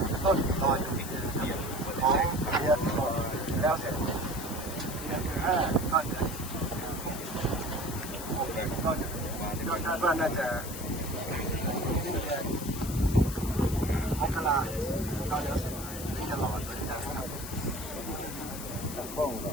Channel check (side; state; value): left; noise; hiss, 10 dB below the sound